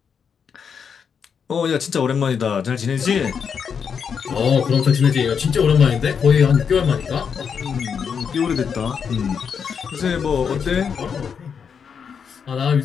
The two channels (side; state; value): right; quieter; 6.8 dB